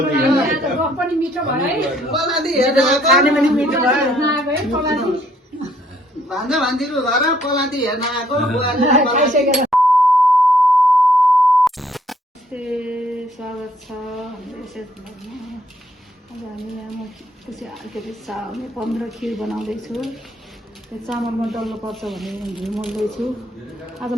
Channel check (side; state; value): both; normal; correlation 0.66